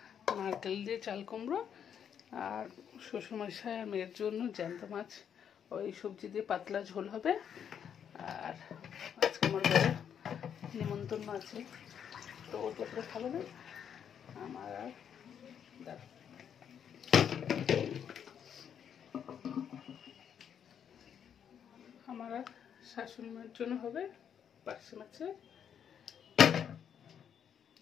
নারকেল দিয়ে চাল কুমড়ো, আর শ্বশুরমশাই আর মেয়ের জন্য জ্যান্ত মাছ, ওই সবজি দিয়ে পাতলা ঝোল হবে। আর আজকে আমার ঘরে নিমন্ত্রণ আছে, তো ও তো করে খাবে না, আমার আর আমার আর শাশুড়ি মায়ের জন্য হবে পার্শে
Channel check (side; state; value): right; quieter; 8.3 dB